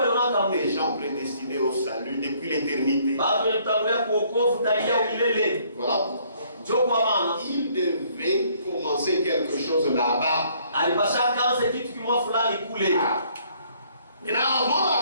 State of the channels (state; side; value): inverted; both; correlation -0.63